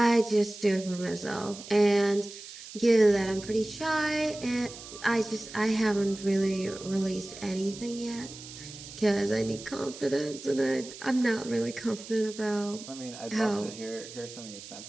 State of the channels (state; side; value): noise; right; hiss, 14 dB below the sound